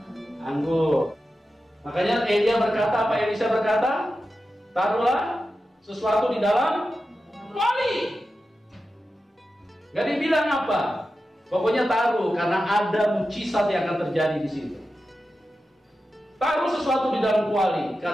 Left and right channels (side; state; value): both; normal; correlation 0.92